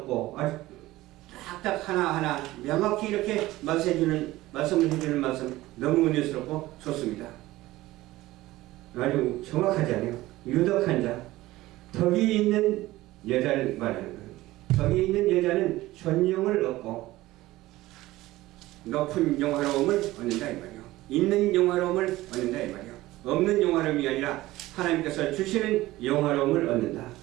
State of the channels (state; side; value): quieter; left; 17.5 dB